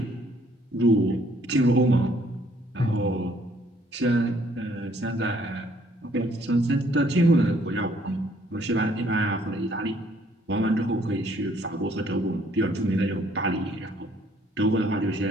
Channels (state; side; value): normal; both; correlation 0.64